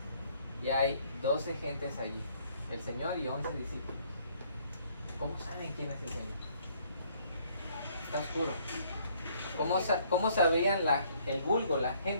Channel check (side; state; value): both; inverted; correlation -0.64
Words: Y hay 12 gentes allí, el Señor y 11 discípulos. ¿Cómo saben quién es el Señor? Está oscuro. ¿Cómo sabrían el vulgo, la